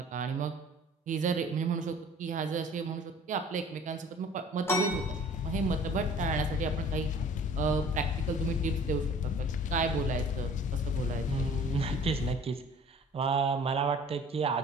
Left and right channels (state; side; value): normal; both; correlation 0.49